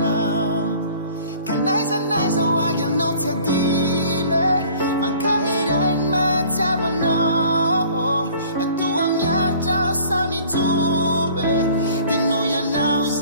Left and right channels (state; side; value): inverted; both; correlation -0.50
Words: Ka naizanaiza ho agy anao tsy adino. Mankahery mahatsiavanao. Atoa miaritra aho samy joro. Dia noho ianao